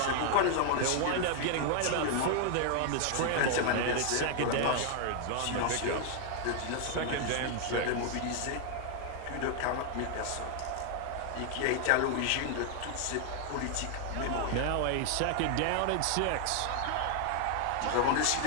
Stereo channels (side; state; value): both; different; correlation 0.00